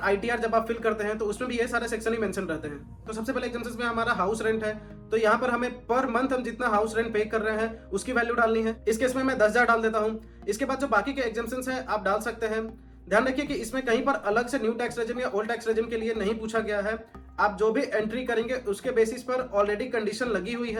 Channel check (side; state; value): both; identical; correlation 1.00